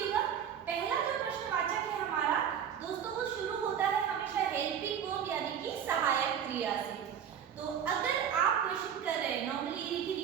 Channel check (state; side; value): quieter; left; 8.6 dB